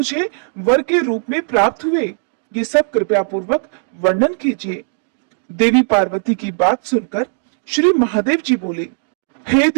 वर के रूप में प्राप्त हुए, ये सब कृपया पूर्वक वर्णन कीजिए। देवी पार्वती की बात सुनकर श्री महादेव जी बोले, हे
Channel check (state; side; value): silent; left; 67 dB below the other